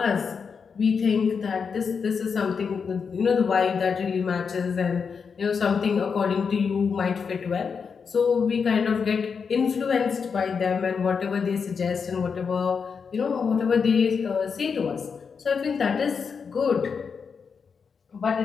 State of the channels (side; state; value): right; quieter; 5.9 dB